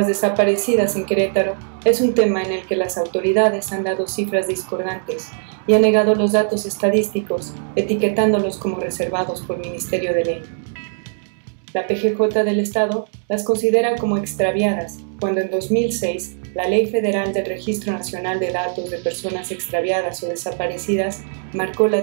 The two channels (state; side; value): silent; left; digital silence